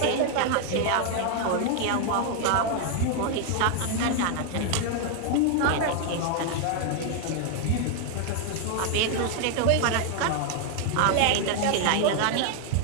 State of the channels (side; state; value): both; different; correlation 0.00